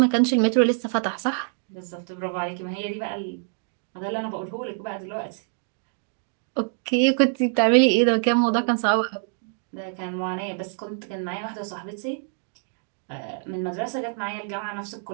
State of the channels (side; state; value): left; silent; 61 dB below the other